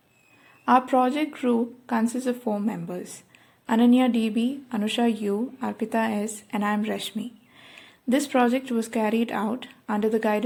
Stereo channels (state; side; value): identical; both; correlation 1.00